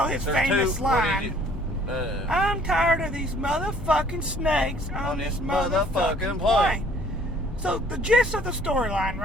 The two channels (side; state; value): both; normal; correlation 0.57